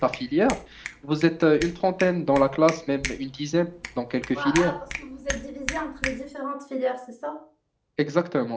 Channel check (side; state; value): both; identical; correlation 1.00